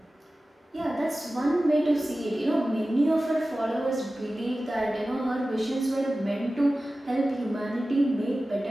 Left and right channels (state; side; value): normal; both; correlation 0.95